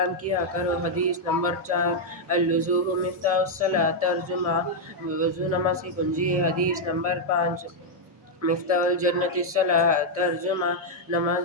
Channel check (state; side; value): normal; both; correlation -0.02